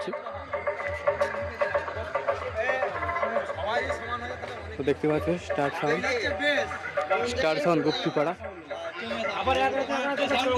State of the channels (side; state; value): both; identical; correlation 1.00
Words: তো দেখতে পাচ্ছ স্টার সাউন্ড গুপ্তিপাড়া।